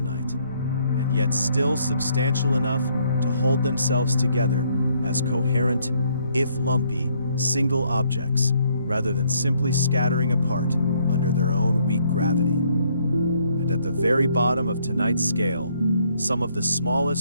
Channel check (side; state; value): both; inverted; correlation -0.69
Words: and yet still substantial enough to hold themselves together as coherent, if lumpy, single objects, rather than simply scattering apart under their own weak gravity. And at the very bottom of tonight's scale, some of the